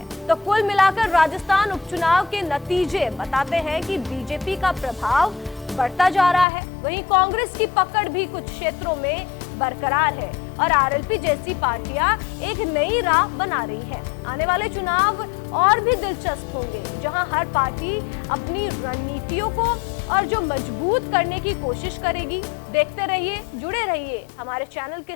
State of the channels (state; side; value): drops out; right; at 6.5 s